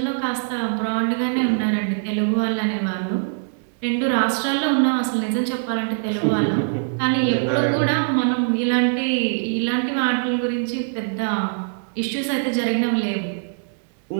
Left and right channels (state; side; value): silent; left; digital silence